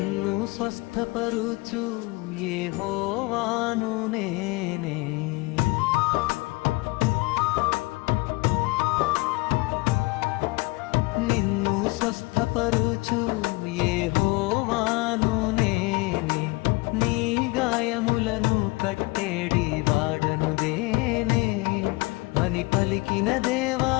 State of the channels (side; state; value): right; quieter; 23.8 dB